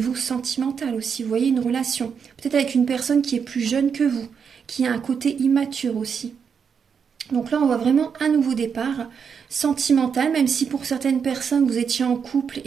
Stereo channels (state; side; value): quieter; left; 6.6 dB